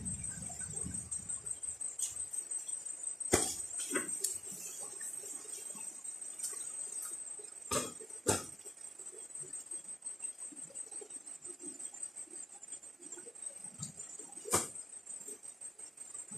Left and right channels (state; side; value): normal; both; correlation 0.92